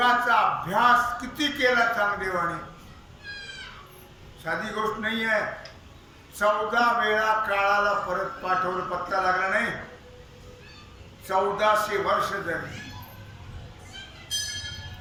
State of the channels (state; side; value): identical; both; correlation 1.00